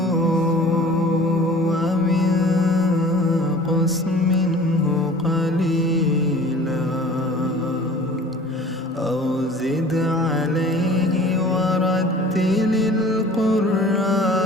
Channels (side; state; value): both; normal; correlation 0.46